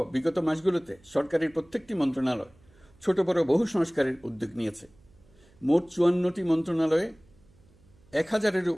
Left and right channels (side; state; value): right; noise; hum, 29 dB below the sound